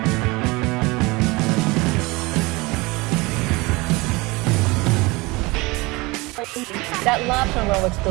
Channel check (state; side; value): quieter; left; 23.8 dB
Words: That lobster roll looks